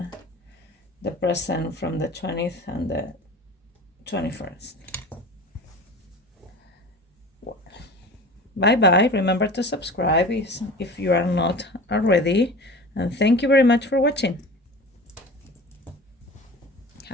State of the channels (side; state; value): both; normal; correlation 0.37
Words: present from the 20th and the 21st. Bye bye. Remember to subscribe if you are not already, and thank you very much for watching.